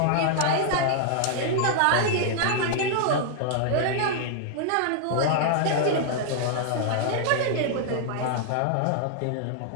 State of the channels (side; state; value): both; different; correlation -0.01